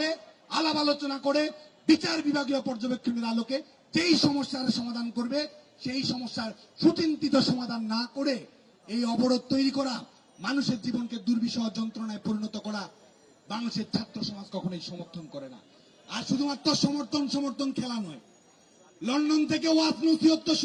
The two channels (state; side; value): identical; both; correlation 1.00